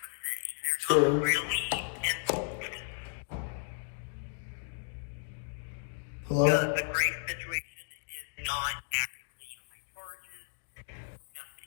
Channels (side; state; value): right; silent; digital silence